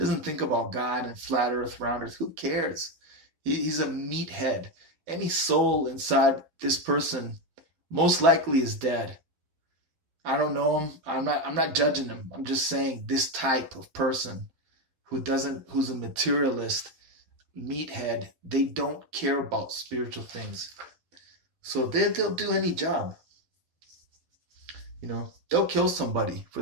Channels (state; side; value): late; left; 12 ms